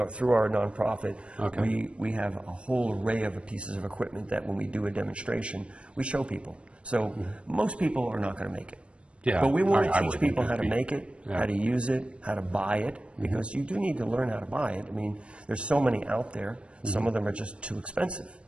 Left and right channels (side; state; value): left; late; 0.059 ms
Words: through our nonprofit, we have a whole array of pieces of equipment that when we do a demonstration, we show people. So most people are not going to make it. But we want to teach people how to make it, how to use it, how to buy it, because you do need to learn how to buy it. I mean, there's so many out there. Some of them are just too expensive.